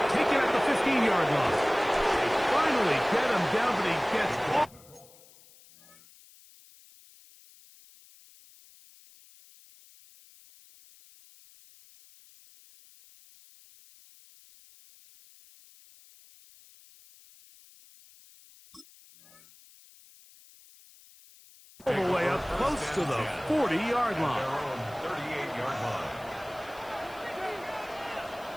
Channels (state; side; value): noise; left; hiss, 25 dB below the sound